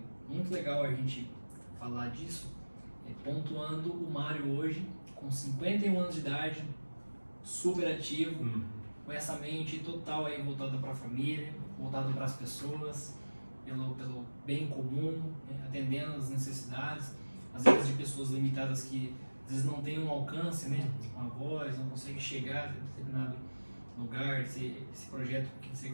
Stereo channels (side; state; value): both; inverted; correlation -1.00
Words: muito legal a gente falar disso, pontuando o Mário hoje, com 51 anos de idade, super ativo, com essa mente total aí voltada para a família, voltada para as pessoas, pelo bem comum, atendendo as necessidades, às vezes de pessoas limitadas que às vezes não têm um alcance, uma voz, não conseguem chegar a determinado lugar. Esse projeto que você